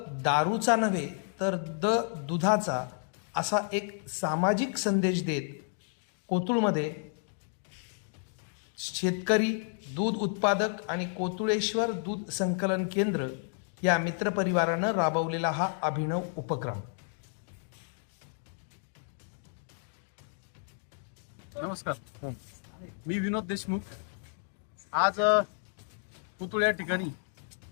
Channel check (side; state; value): right; silent; 57 dB below the other